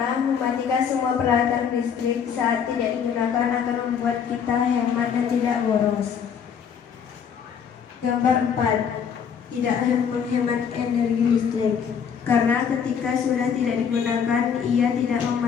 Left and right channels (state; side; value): quieter; right; 7.3 dB